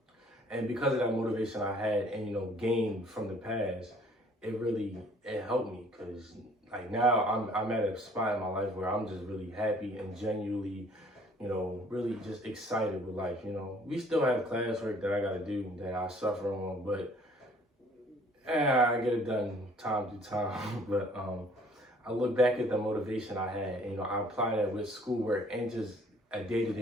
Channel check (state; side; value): normal; both; correlation 0.57